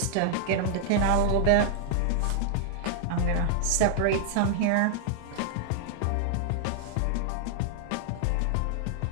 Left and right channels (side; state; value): both; different; correlation -0.01